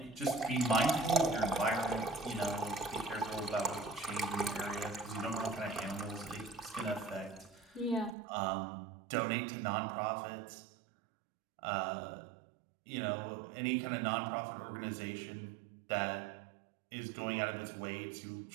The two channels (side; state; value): left; drops out; at 8.2 s